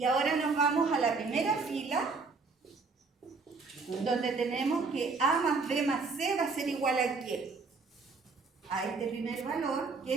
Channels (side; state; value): left; quieter; 4.3 dB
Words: ahora nos vamos a la primera fila, donde tenemos que A más B más C va a ser igual a ¿qué? A este primer valor,